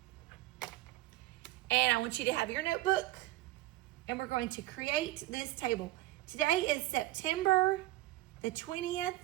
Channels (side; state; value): left; quieter; 17.1 dB